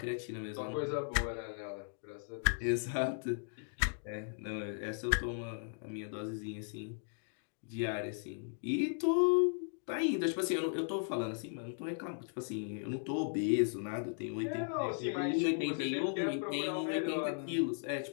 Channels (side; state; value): right; silent; digital silence